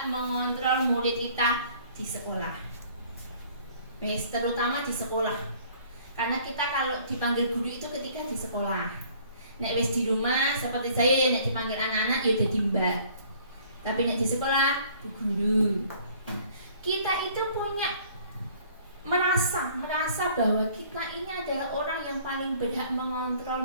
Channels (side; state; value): both; inverted; correlation -0.56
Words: mengontrol murid kita di sekolah. Terutama di sekolah. Karena kita kalau dipanggil guru itu ketika di sekolah. Nek wis di rumah seperti saya ya nek dipanggil anak-anak ya udah mbak. Tapi nek di sekolah bu guru. Kita itu merasa bahwa kita ini adalah orang yang paling berhak mengontrol